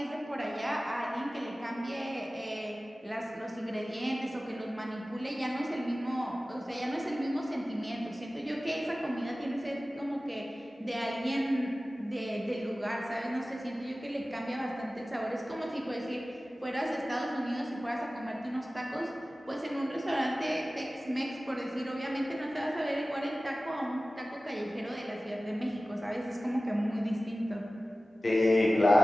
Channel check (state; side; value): normal; both; correlation 0.96